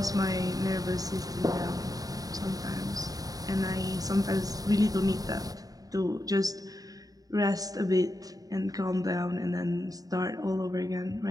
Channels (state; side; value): late; left; 0.18 ms